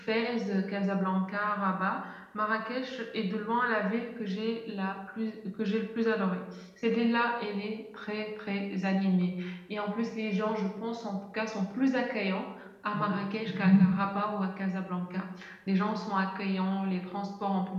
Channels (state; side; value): identical; both; correlation 1.00